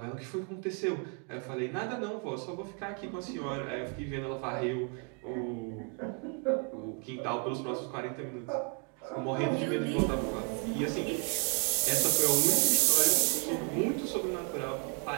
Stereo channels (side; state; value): left; quieter; 38.7 dB